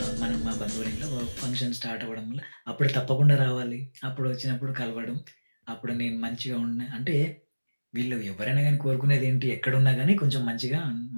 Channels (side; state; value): both; inverted; correlation -1.00